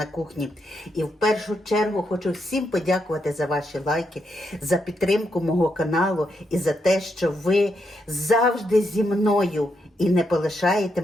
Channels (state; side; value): normal; both; correlation 0.80